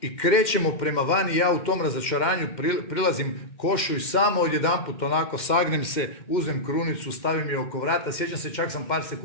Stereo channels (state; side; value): late; right; 2.1 ms